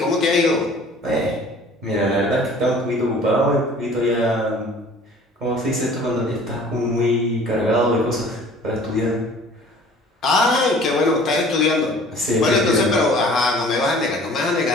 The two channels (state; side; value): normal; both; correlation 0.49